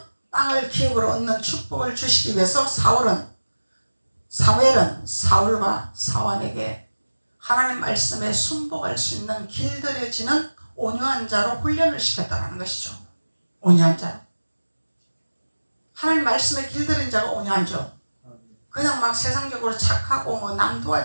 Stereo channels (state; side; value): inverted; both; correlation -1.00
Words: 땅을 기업으로 얻는 축복을 주시기 위해서 사무엘은 사울과 사환에게 하나님 말씀에 순복할 수 있는 길들여지는 온유한 자로 훈련을 시켰다는 것이죠. 온유한 자. 하나님 말씀에 길들인 자가 온유하죠. 그냥 막 세상적으로 착하고 뭐 남